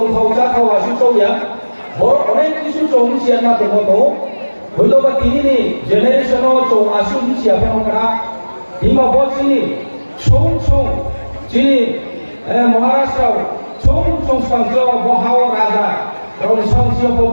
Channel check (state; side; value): inverted; both; correlation -1.00